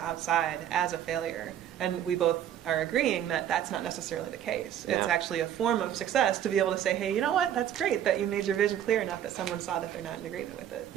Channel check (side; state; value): left; quieter; 10.4 dB